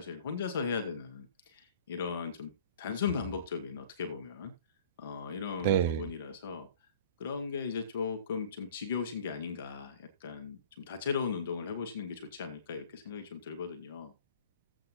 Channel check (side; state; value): both; inverted; correlation -0.47